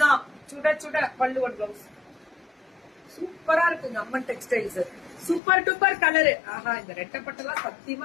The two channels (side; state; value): right; drops out; at 5.4 s